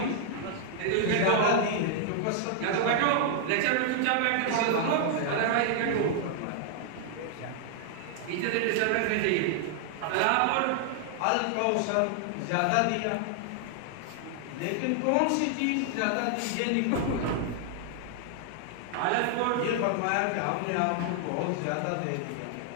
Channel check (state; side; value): different; both; correlation 0.00